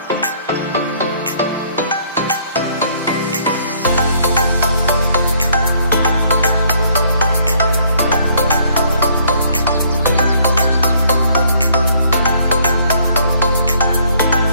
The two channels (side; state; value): both; inverted; correlation -0.63